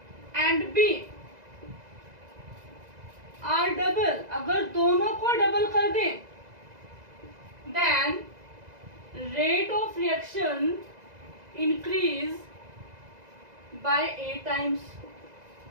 and B are double, अगर दोनों को डबल कर दें, then rate of reaction increase by 8 times.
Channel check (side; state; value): left; late; 2.0 ms